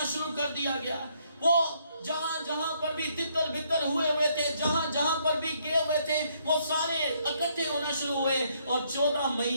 شروع کر دیا گیا۔ وہ جہاں پر بھی تتر بتر ہوئے تھے، جہاں پر بھی گئے ہوئے تھے، وہ سارے اکٹھے ہونا شروع ہوئے، اور 14 مئی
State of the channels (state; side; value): inverted; both; correlation -0.70